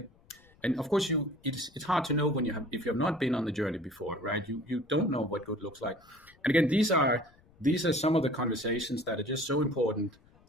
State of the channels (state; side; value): noise; left; rumble, 29 dB below the sound